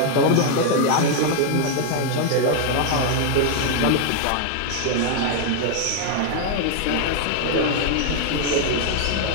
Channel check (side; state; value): both; different; correlation 0.00